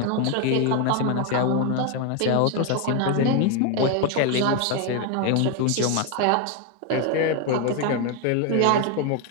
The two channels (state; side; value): different; both; correlation 0.01